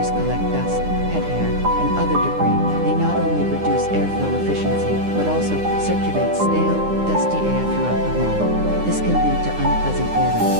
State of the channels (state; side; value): late; left; 9.8 ms